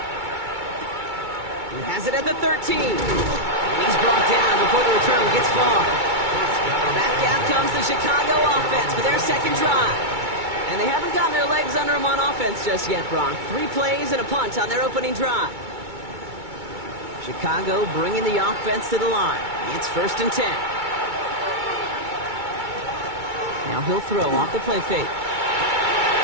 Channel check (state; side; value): late; left; 2.2 ms